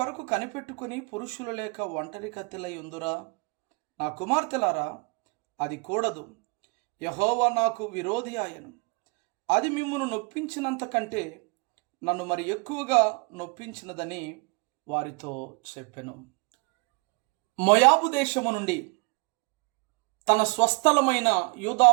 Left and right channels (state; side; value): quieter; left; 31.1 dB